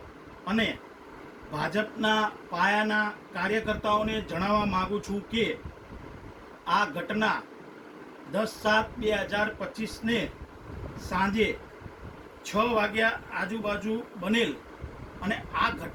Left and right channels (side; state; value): both; identical; correlation 1.00